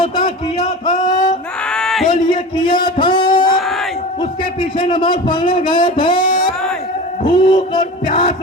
کیا تھا؟ بولیے کیا تھا؟ اس کے پیچھے نماز پڑھنے گئے تھے، بھوک اور پیاس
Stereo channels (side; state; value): both; normal; correlation 0.32